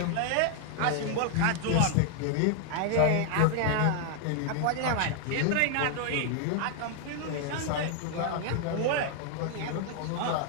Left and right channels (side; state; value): both; different; correlation 0.00